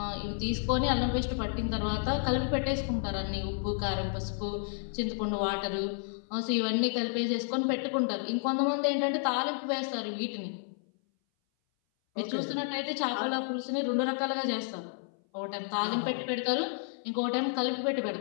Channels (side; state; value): right; silent; 57 dB below the other